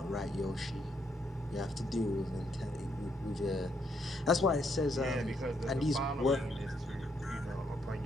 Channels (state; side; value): normal; both; correlation 0.75